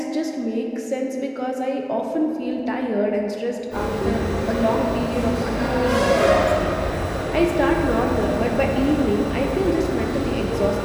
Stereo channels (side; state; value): both; identical; correlation 1.00